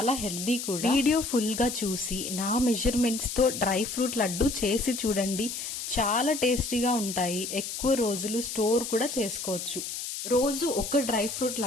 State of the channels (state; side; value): noise; left; hiss, 6 dB below the sound